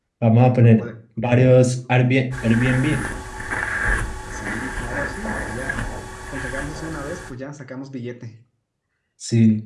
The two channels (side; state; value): both; identical; correlation 1.00